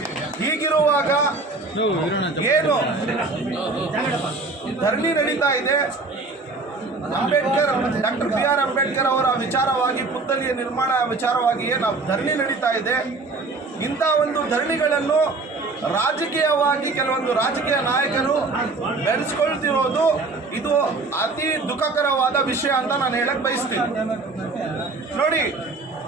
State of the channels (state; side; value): quieter; left; 3.6 dB